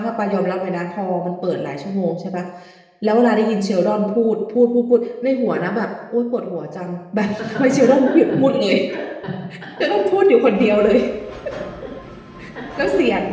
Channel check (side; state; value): both; identical; correlation 1.00